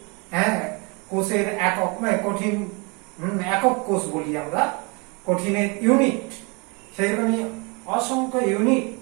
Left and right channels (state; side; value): quieter; left; 30.8 dB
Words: কোষের একক, কঠিন একক কোষ বলি আমরা, কঠিনের ইউনিট। সেইরকমই অসংখ্য ইউনিট